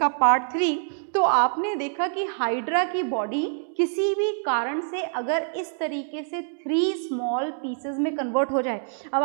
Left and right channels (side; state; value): left; silent; digital silence